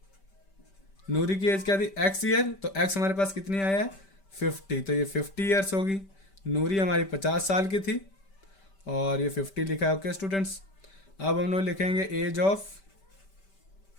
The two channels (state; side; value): late; right; 5.1 ms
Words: नूरी की एज क्या थी x ईयर, तो x हमारे पास कितनी आया है 50, तो ये 50 ईयर्स होगी। नूरी हमारी 50 साल की थी और ये 50 लिखा है। ओके स्टूडेंट्स, अब हम लोग लिखेंगे एज